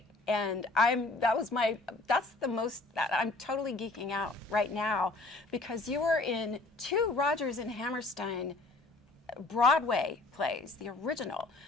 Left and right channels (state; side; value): quieter; right; 3.2 dB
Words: And I'm totally geeking out right now, because you were in 2 Rodgers and Hammerstein Broadway plays, the original.